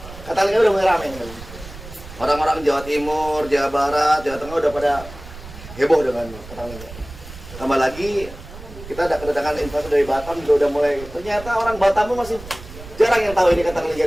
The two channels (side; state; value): right; noise; rumble, 15 dB below the sound